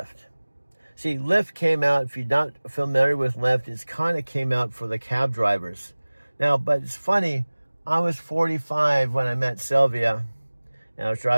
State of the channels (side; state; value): both; inverted; correlation -1.00